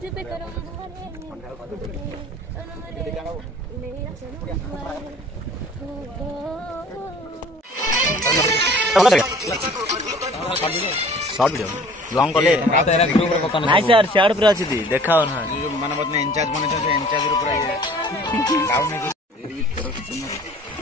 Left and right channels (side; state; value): both; normal; correlation 0.49